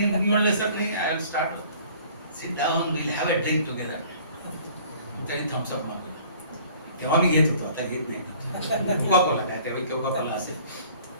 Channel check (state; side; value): inverted; both; correlation -0.52